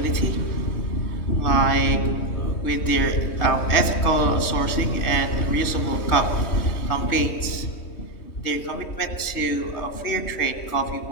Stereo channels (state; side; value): late; right; 3.2 ms